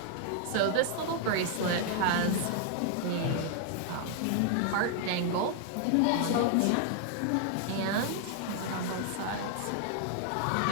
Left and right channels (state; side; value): different; both; correlation 0.00